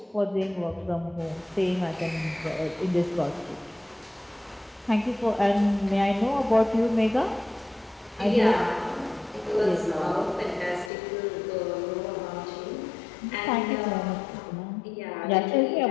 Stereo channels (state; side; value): drops out; right; at 10.9 s